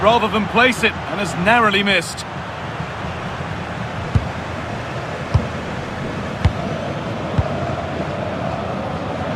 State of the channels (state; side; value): identical; both; correlation 1.00